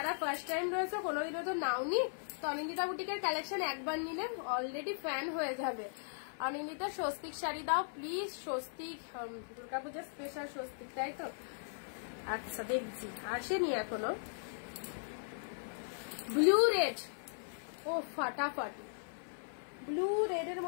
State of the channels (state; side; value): silent; right; 52 dB below the other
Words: ফার্স্ট টাইম রয়েছে কোনোদিনও তো নাওনি, তো অনিন্দিতা বুটিকের কালেকশন একবার নিলে অলরেডি ফ্যান হয়ে যাবে। অনিন্দিতা স্বস্তিক শাড়ি দাও প্লিজ, স্বস্তিক দুর্গাপূজার স্পেশাল স্বস্তিক, তাই তো? আচ্ছা দেখছি, আসেনি এখনো। ব্লু রেড, ও ফাটাফাটি, ব্লু রেড এর